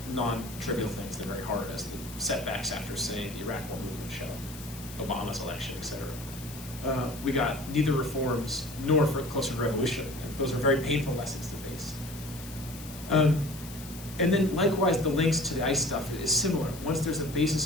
non-trivial things. They're very hard, as the setbacks after, say, the Iraq War movement show, Obama's election, etc. We got neither reforms nor for closer to revolution. And those are very painful lessons to face. And then likewise, the links to the ICE stuff is similar. Once there's a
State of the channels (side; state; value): left; noise; hiss, 15 dB below the sound